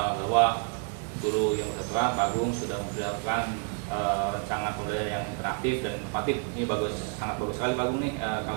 bahwa guru yang bersangkutan Pak Agung sudah mempersiapkan rancangan pembelajaran yang interaktif dan inovatif. Ini sangat bagus sekali Pak Agung nih.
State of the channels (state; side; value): quieter; left; 40.0 dB